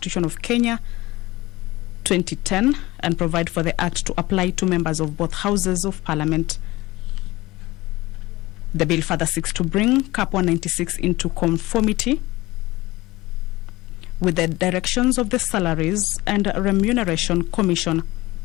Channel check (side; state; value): right; quieter; 19.5 dB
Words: of Kenya 2010 and provide for the Act to apply to members of both Houses of Parliament. The bill further seeks to bring Cap 196 into conformity with the directions of the Salaries and Remuneration Commission